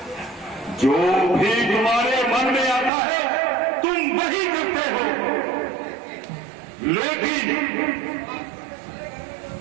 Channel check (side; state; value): left; drops out; at 2.9 s